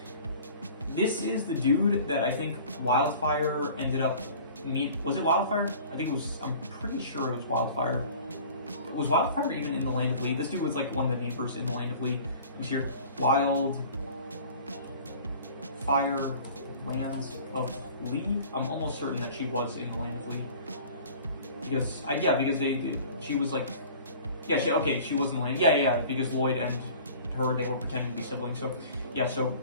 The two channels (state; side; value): inverted; both; correlation -0.46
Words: This is the dude that I think Wildfire ended up was it Wildfire? I think it was. I'm pretty sure it was Wildfire. Was Wildfire even in the Land of Lee? This dude was like one of the neighbors in the Land of Lee. I'm here. Fire Lands of Lee. I'm almost certain that she was in the Land of Lee because she was like, yeah, she was in the land. Yeah, because Lloyd and her, they were pretending to be siblings. So yeah, so